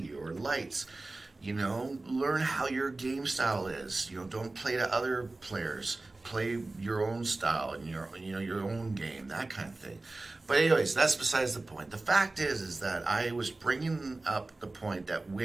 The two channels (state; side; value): quieter; left; 3.1 dB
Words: or lights. You know, learn how your game style is. You know, don't play to other players. Play your own style and your own game, that kind of thing. But anyways, that's besides the point. The fact is that I was bringing up the point that